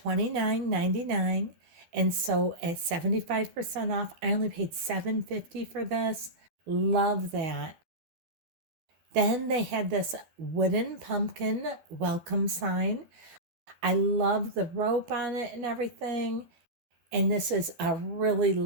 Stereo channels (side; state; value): left; late; 12 ms